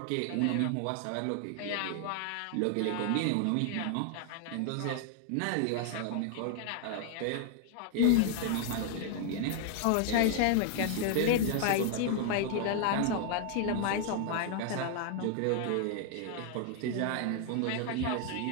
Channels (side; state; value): both; different; correlation 0.00